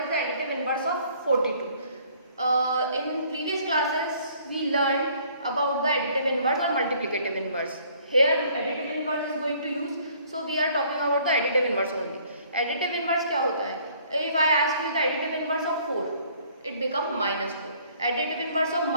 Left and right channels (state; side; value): inverted; both; correlation -0.59